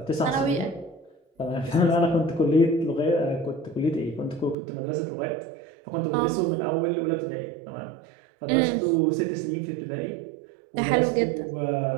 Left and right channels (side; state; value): left; drops out; at 4.5 s